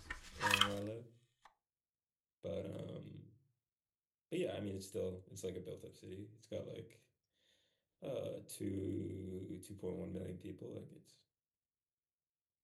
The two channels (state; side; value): identical; both; correlation 1.00